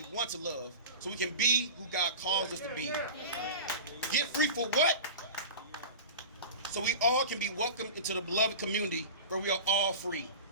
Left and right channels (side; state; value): both; inverted; correlation -0.32